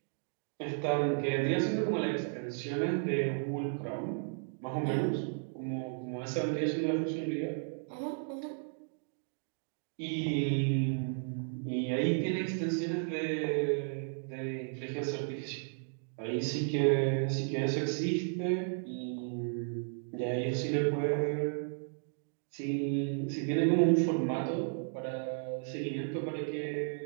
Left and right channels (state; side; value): silent; left; digital silence